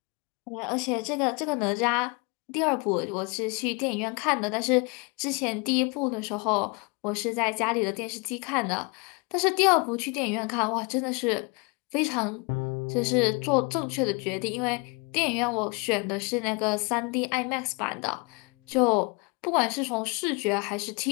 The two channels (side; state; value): right; quieter; 30.3 dB